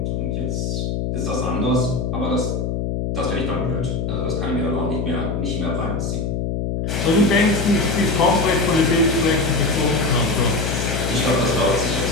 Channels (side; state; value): left; noise; hum, 1 dB below the sound